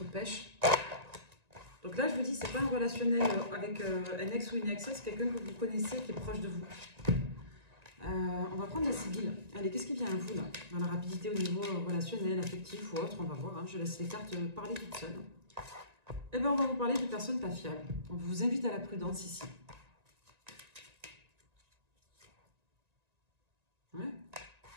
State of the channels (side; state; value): left; late; 1.9 ms